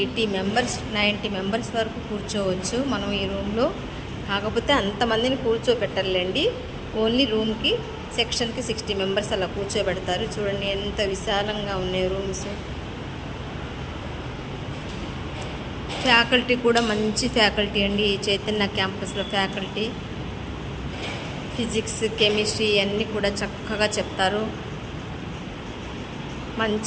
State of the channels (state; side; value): identical; both; correlation 1.00